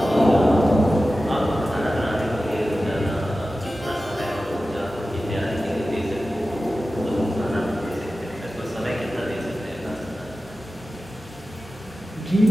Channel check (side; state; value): both; normal; correlation 0.94